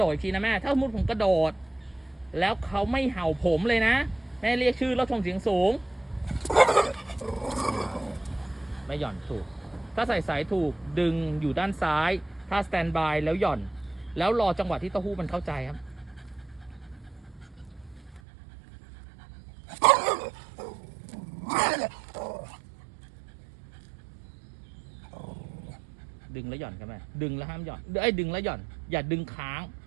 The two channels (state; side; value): drops out; left; at 18.2 s